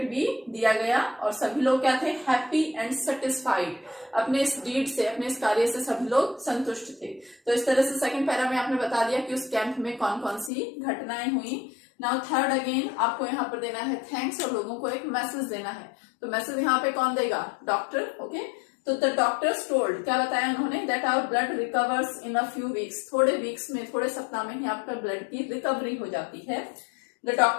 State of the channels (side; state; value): right; drops out; at 10.5 s